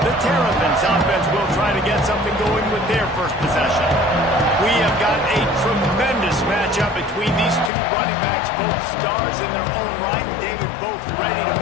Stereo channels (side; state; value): right; drops out; at 7.7 s